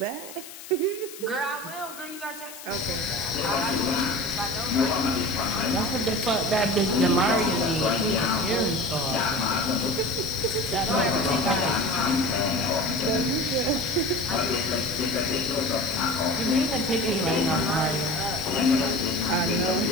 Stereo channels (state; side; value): noise; left; hiss, 15 dB below the sound